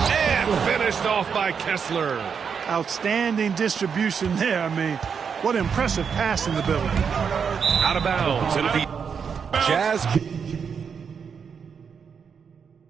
finished off by Kessler. Outstanding distribution there. I mean, what impressive passing ability. Out of bounds. It'll be Jazz.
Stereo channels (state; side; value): quieter; left; 6.6 dB